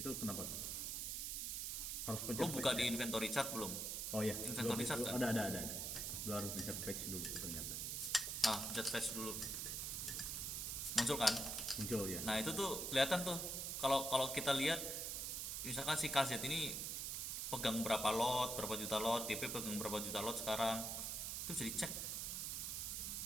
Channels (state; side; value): noise; right; hiss, 2 dB below the sound